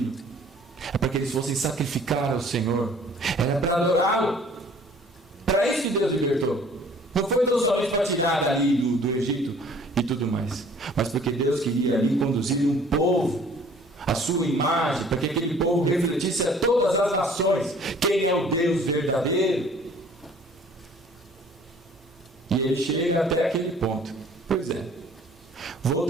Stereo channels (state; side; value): normal; both; correlation 0.53